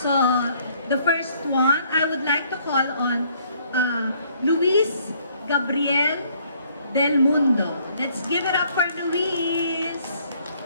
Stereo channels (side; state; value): both; inverted; correlation -0.64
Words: the first one, I would like to call on Luis Gabriel Del Mundo. Let's give it up for Luis.